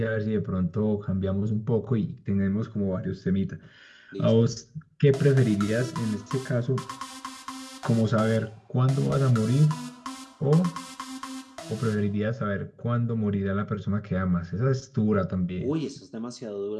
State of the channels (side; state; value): both; identical; correlation 1.00